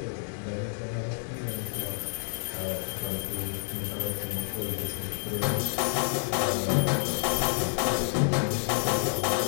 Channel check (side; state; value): right; silent; digital silence